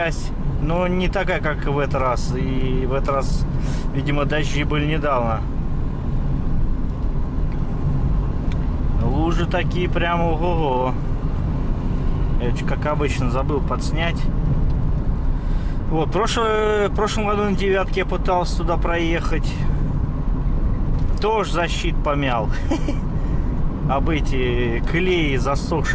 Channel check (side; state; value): both; identical; correlation 1.00